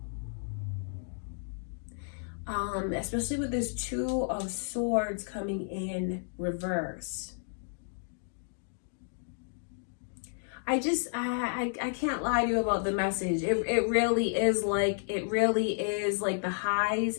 Especially with this Two of Swords coming in reverse. I can't lie to you about the message. It really is like the highs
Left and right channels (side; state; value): right; silent; digital silence